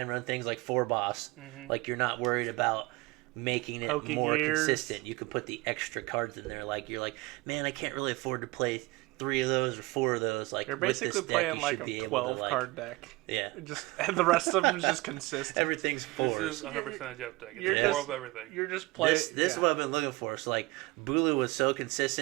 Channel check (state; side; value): quieter; left; 22.4 dB